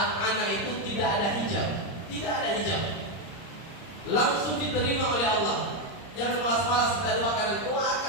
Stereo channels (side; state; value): right; late; 29 ms